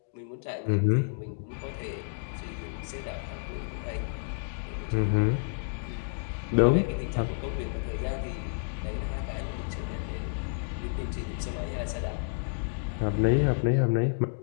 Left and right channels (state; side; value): silent; right; digital silence